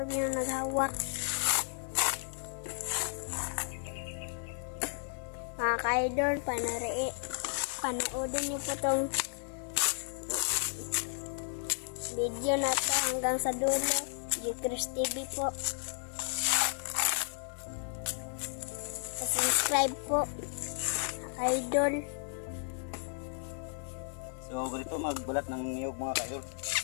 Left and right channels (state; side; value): silent; right; 55 dB below the other